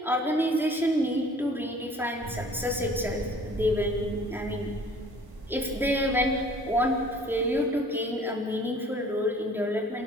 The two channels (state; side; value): normal; both; correlation 0.51